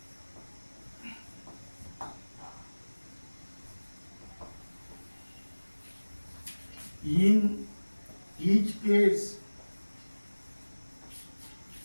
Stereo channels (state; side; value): inverted; both; correlation -1.00